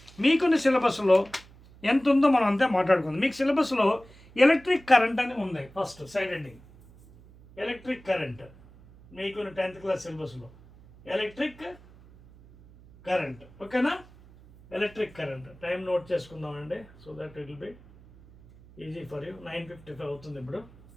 మీకున్న సిలబస్లో ఎంత ఉందో మనం అంతే మాట్లాడుకుందాం. మీకు సిలబస్లో ఎలక్ట్రిక్ కరెంట్ అని ఉంది. First side ending electric current మీకున్న 10th క్లాస్ సిలబస్లో ఎలక్ట్రిక్ కరెంట్, ఓకేనా? ఎలక్ట్రిక్ కరెంట్ టైం నోట్ చేసుకుందామండి, so that it will be easy for you. 9:55 అవుతుంది ఇప్పుడు,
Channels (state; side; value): noise; right; hum, 23 dB below the sound